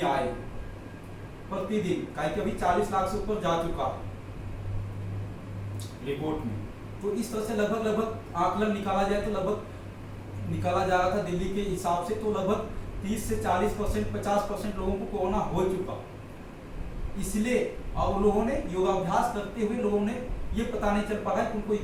आए प्रतिदिन, कि अभी 40 लाख से ऊपर जा चुका है रिपोर्ट में। तो इस तरह से लगभग आकलन निकाला जाए तो लगभग निकाला जा रहा था दिल्ली के हिसाब से, तो लगभग 30 से 40%, 50% लोगों को कोरोना हो चुका। इसलिए और लोगों ने योगाभ्यास करते हुए लोगों ने ये पता नहीं चल पा रहा है कि उनको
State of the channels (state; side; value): identical; both; correlation 1.00